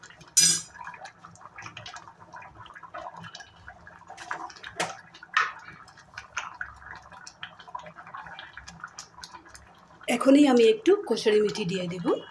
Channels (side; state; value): both; identical; correlation 1.00